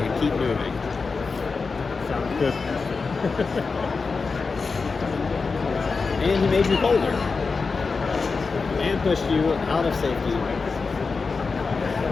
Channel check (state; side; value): quieter; right; 4.6 dB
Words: keep moving. Sounds good. And he made you colder. And pushed you out of safety.